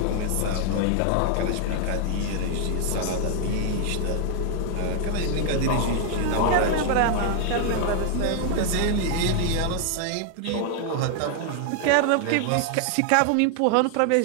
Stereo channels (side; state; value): both; different; correlation 0.00